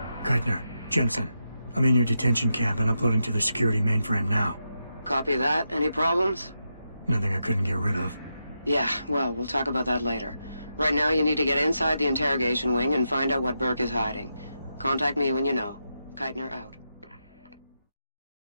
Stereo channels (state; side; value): inverted; both; correlation -0.86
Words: Keitner, Jensen, I'm in your detention camp and uploading to the security mainframe now. Copy that. Any problems? Nothing I couldn't get rid of. Yeah, well, we'll talk about that later. Right now, you need to get inside the interrogation wing and find out what Burke is hiding. Contact me when you know. Keitner out.